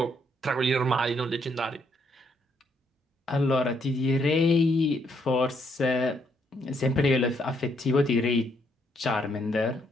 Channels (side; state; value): both; normal; correlation 0.73